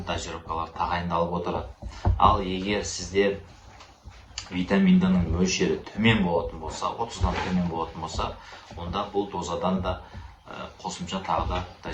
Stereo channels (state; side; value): identical; both; correlation 1.00